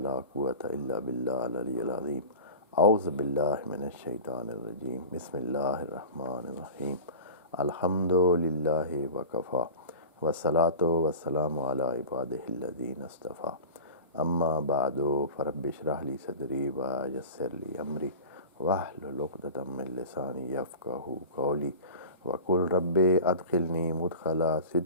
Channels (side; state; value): both; inverted; correlation -0.34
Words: quwwata illa billah al-aliyyil azim. A'udhu billahi minash shaitanir rajim. Bismillahir rahmanir rahim. Alhamdulillahi wa kafa. Wa salatu wa salamu ala ibadihi alladhina istafa. Amma ba'du, farabbi shrah li sadri wa yassir li amri wahlul 'uqdatam min lisani yafqahu qawli wa qul rabbi adkhilni mudkhala